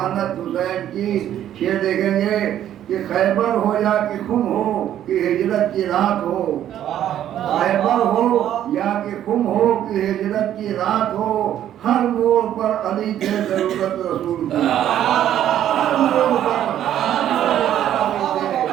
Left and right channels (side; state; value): left; quieter; 11.2 dB